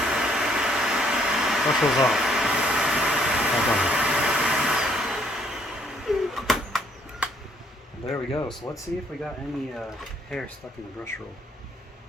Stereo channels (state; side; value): normal; both; correlation 0.66